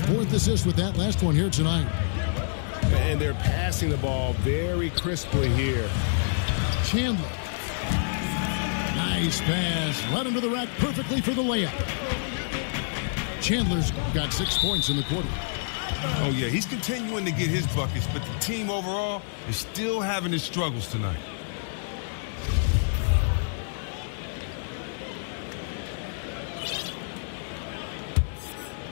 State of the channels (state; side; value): silent; right; digital silence